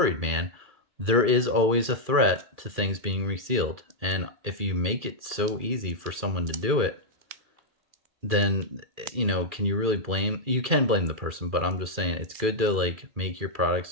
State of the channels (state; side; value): late; left; 2.3 ms